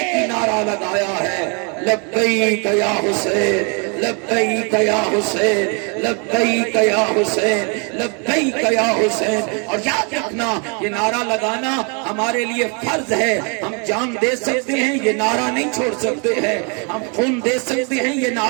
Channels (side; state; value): left; quieter; 35.0 dB